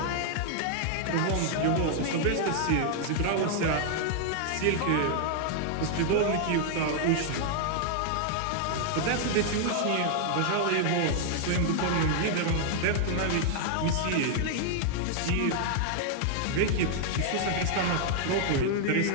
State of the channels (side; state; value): both; different; correlation 0.00